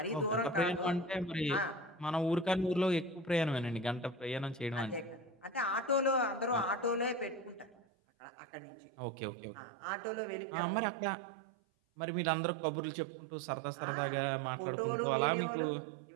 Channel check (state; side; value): drops out; left; at 7.8 s